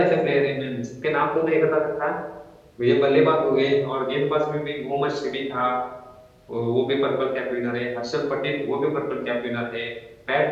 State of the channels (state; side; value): identical; both; correlation 1.00